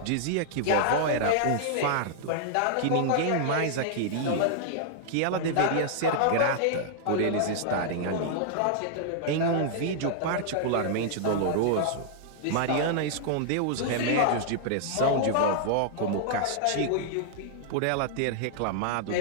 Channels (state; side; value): different; both; correlation -0.01